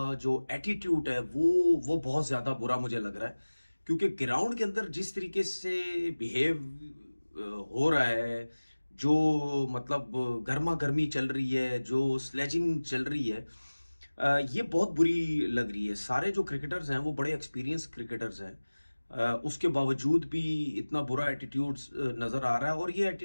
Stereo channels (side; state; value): both; inverted; correlation -1.00